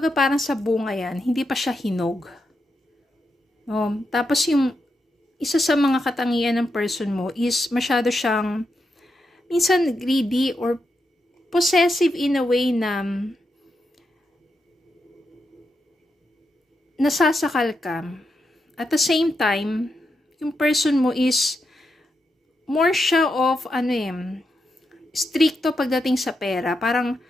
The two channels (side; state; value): both; normal; correlation 0.85